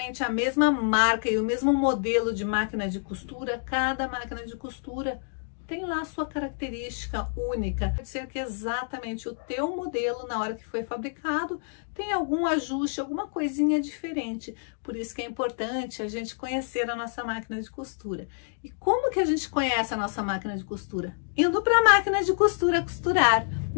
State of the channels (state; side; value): silent; right; digital silence